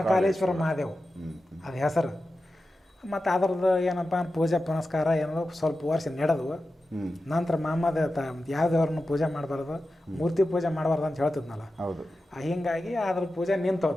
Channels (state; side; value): normal; both; correlation 0.92